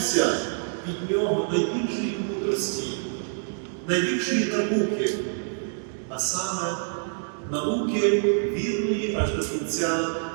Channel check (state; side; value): silent; left; digital silence